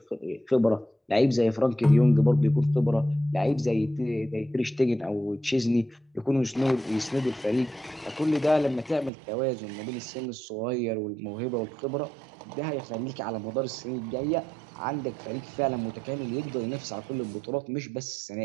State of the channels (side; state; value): left; drops out; at 9.1 s